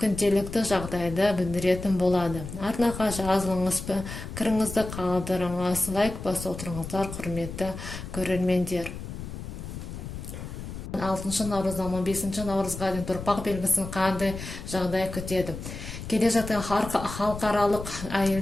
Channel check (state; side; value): noise; left; rumble, 9 dB below the sound